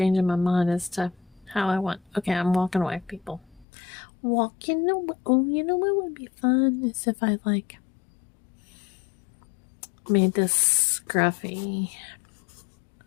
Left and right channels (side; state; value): right; drops out; at 3.7 s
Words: my mind as to how I want. Okay, I'm walking away, people. Walking away. Oh, you know what would be fun is if I made this scruffy.